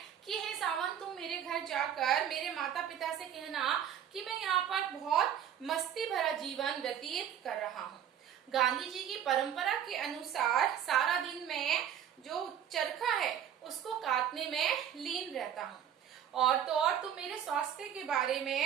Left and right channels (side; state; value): left; quieter; 9.5 dB